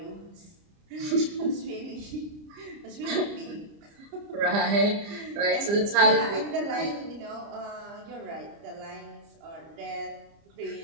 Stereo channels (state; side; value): late; left; 30 ms